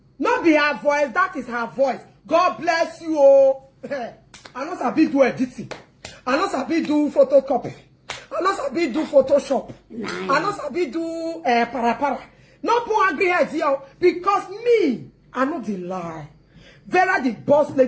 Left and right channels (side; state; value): both; identical; correlation 1.00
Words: not be her voice, that is her voice. God bless you. Oh. I know sabi do editing. I know sabi do photocopy. I know sabi do Photoshop. I know sabi do para. No put angry heads here because me, I know the lie. Vera the boss